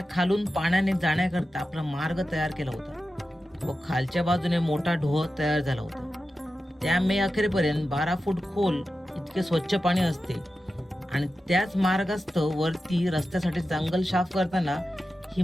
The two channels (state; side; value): normal; both; correlation 0.92